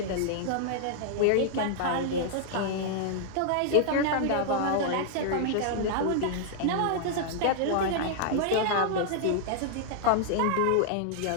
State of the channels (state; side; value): different; both; correlation -0.01